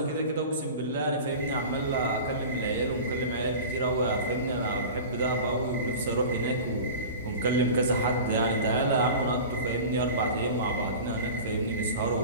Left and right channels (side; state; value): both; inverted; correlation -0.35